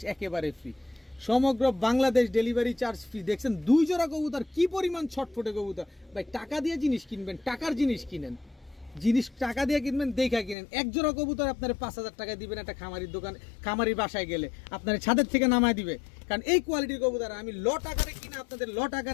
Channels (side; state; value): right; drops out; at 10.6 s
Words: একেবারে ফ্রি, সমগ্র বাংলাদেশ ডেলিভারি চার্জ ফ্রি। দেখছেন 2 জোড়া কবুতর কি পরিমাণ ছটফটে কবুতর। ভাই টাকা দিয়ে জিনিস কিনবেন, টাকার জিনিস কিনেন, জিনিস টাকা দিয়ে কিনবেন দেখা কিনেন। এক জোড়া কবুতর আপনার 5000 টাকা দিবেন একটা খামারির দোকান, খামারির বাসায় গেলে আপনার ছাদের থেকে নামায় দিবে, কারণ এই কোয়ালিটির কবুতর আমি লট আকারে কিনে আপনাদের লট